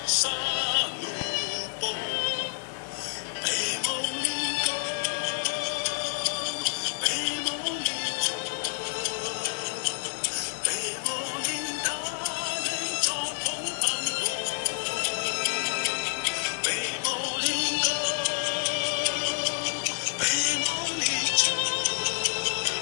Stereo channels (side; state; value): right; silent; digital silence